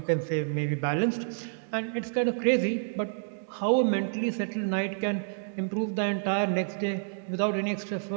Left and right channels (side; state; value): left; silent; digital silence